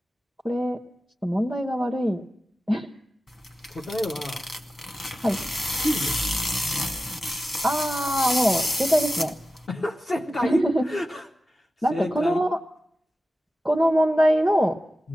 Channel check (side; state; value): both; normal; correlation 0.94